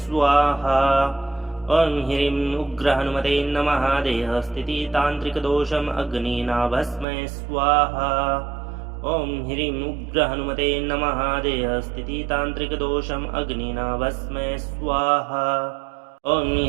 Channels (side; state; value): left; drops out; at 7.1 s